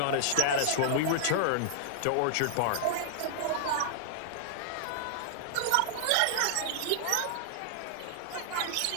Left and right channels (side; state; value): both; different; correlation -0.01